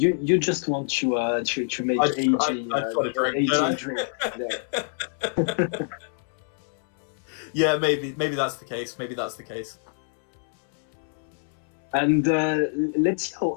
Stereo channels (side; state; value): right; silent; 61 dB below the other